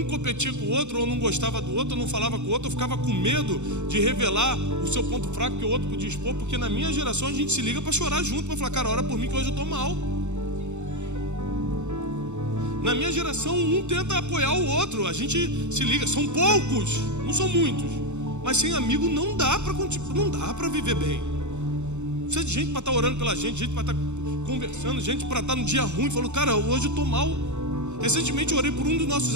competia com o outro, ou não gostava do outro, ou não falava com o outro, ou ficava com medo de revelar o seu ponto fraco que o outro podia expor. Porque na minha geração a gente se liga para chorar junto, para falar, cara, ora por mim que hoje eu estou mal. Na minha geração, um tenta apoiar o outro. A gente se liga, são poucos, não são muitos. Mas sem amigo não dá para viver bem. Precisa de gente para estar orando pela gente para estar conversando, gente para estar no dia ruim. Falou, cara, hoje eu estou mal. Recentemente eu orei por um dos nossos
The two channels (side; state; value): left; late; 0.83 ms